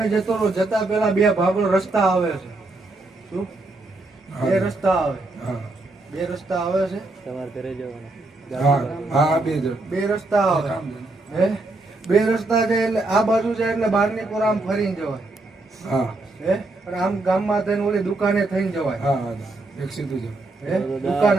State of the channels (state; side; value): quieter; left; 3.0 dB